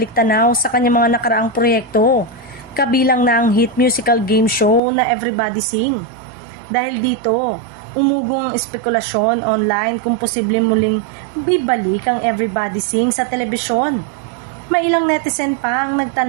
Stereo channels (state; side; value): drops out; left; at 4.8 s